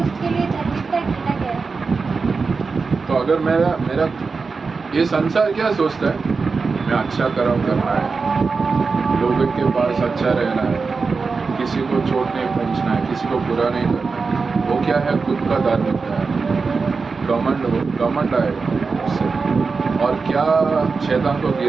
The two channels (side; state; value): left; quieter; 4.6 dB